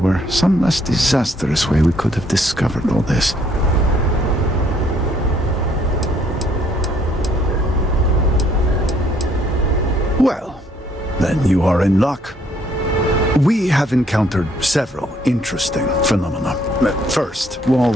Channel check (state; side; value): normal; both; correlation 0.65